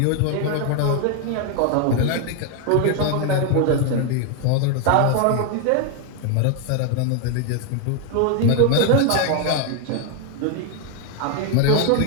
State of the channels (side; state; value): both; different; correlation 0.01